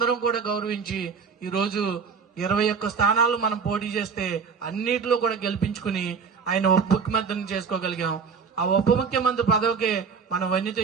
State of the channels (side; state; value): left; quieter; 5.7 dB